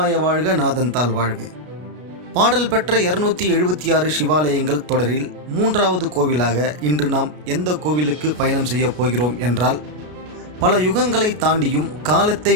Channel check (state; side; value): late; left; 33 ms